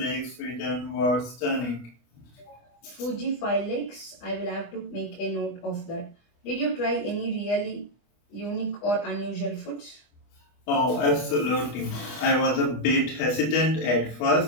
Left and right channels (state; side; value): late; right; 25 ms